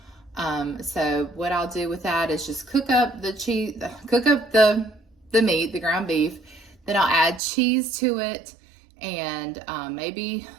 So what I'll do with that is just cook up the meat, the ground beef. Then I'll add cheese to it, and maybe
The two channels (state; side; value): drops out; left; at 7.4 s